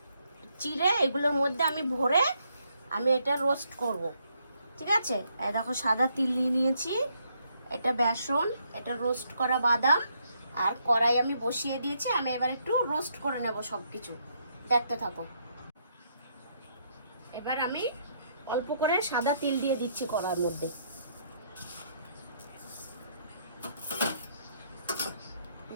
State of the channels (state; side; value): inverted; both; correlation -0.74